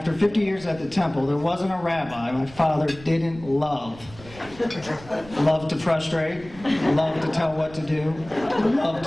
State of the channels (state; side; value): noise; right; rumble, 20 dB below the sound